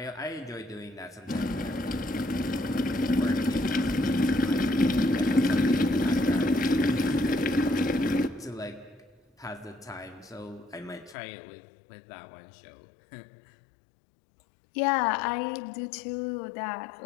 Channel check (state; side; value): drops out; right; at 11.2 s